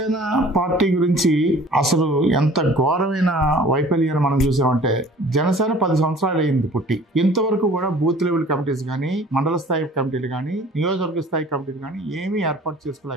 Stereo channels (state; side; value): normal; both; correlation 0.49